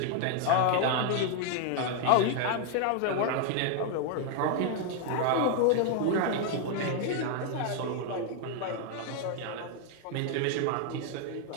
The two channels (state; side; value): different; both; correlation 0.00